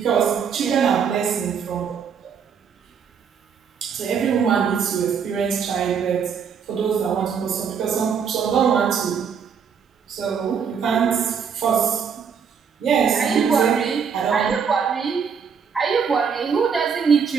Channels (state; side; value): quieter; left; 6.7 dB